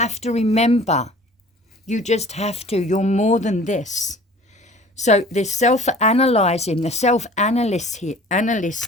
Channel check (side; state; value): both; normal; correlation 0.47